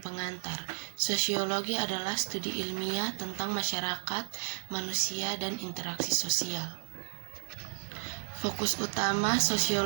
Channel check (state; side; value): silent; left; 56 dB below the other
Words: Sosiologi adalah studi ilmiah tentang masyarakat, manusia, dan interaksi sosial. Fokus utama